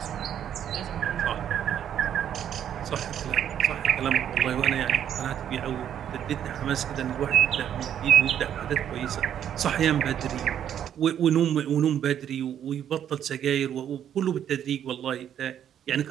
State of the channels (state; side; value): quieter; left; 9.8 dB